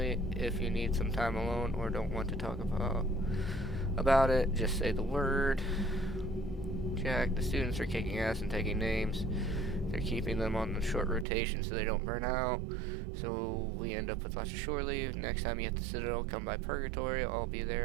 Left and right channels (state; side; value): drops out; left; at 11.2 s